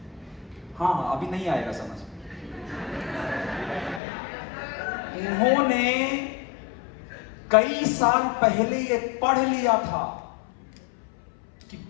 हाँ अभी नहीं आएगा समझ में। उन्होंने कई साल पहले ये पढ़ लिया था कि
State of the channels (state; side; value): drops out; right; at 4.0 s